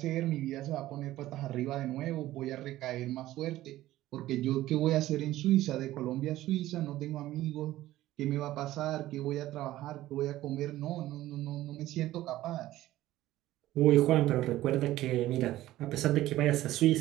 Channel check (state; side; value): quieter; left; 15.3 dB